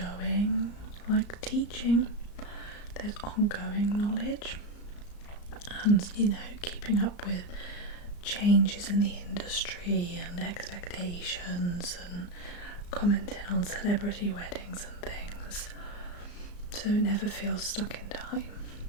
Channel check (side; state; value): right; late; 34 ms